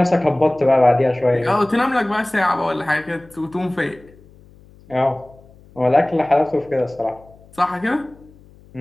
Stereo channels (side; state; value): left; noise; hum, 26 dB below the sound